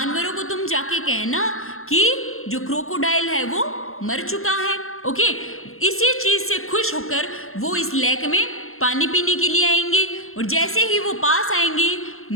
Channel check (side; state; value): right; late; 0.62 ms